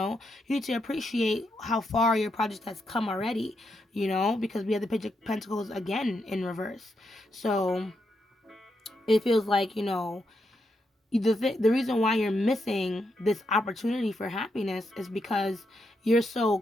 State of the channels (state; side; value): normal; both; correlation 0.82